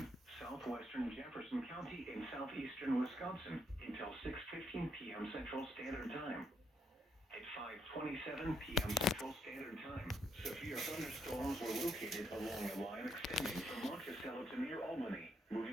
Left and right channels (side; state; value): both; normal; correlation 0.75